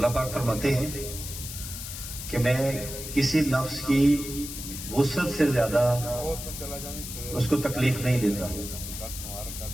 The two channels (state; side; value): noise; left; hiss, 8 dB below the sound